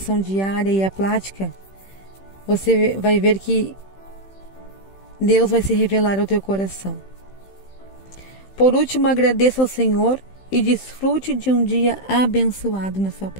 diária e a prática, você vai ver que Deus vai se revelar ao teu coração. Por último, agradeça ao Senhor e desfrute de um dia abençoado na sua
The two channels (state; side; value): late; right; 15 ms